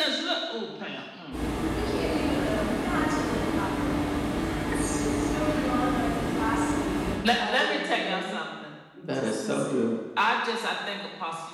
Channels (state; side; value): identical; both; correlation 1.00